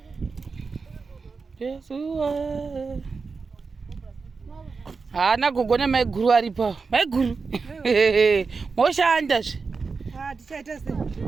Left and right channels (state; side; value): quieter; left; 4.7 dB